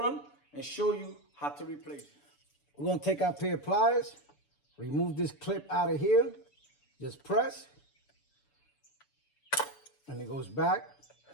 and show you how to replace it. We're going to take our pair of pliers, remove this clip out of here, just press, and it goes back.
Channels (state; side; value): late; right; 6.9 ms